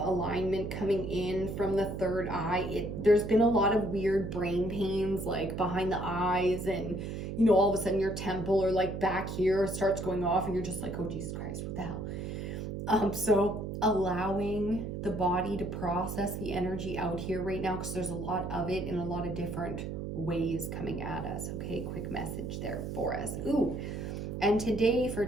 coming in from the third eye. There's been a lot of weird brain pains, like behind the eyes, and you know, all of a sudden your temple or like back here starts going off and you're just like, oh Jesus Christ, what the hell? So allowing the body to process the energy out here right now, because there's a lot of it in a lot of different ways coming at us. Okay, quick message there for us. Ooh. And today for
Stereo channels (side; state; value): right; noise; hum, 5 dB below the sound